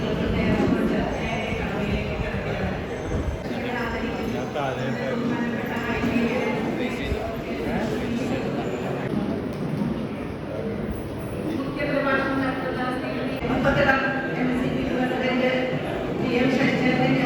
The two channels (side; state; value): both; identical; correlation 1.00